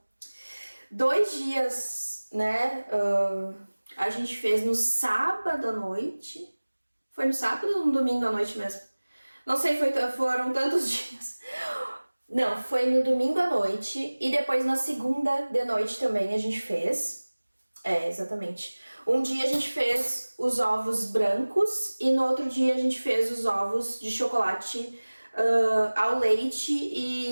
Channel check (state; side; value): inverted; both; correlation -1.00